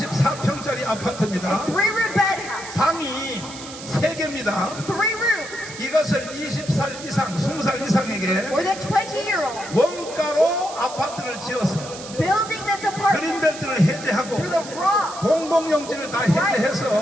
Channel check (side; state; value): right; noise; hiss, 13 dB below the sound